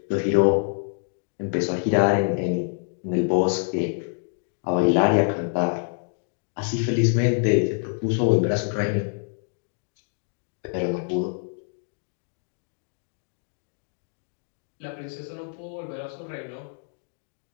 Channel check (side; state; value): right; silent; 61 dB below the other